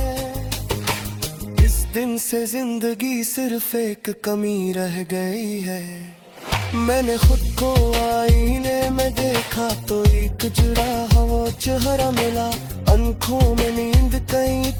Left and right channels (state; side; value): identical; both; correlation 1.00